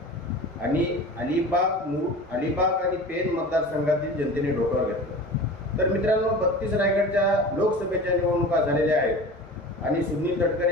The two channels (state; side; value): normal; both; correlation 0.36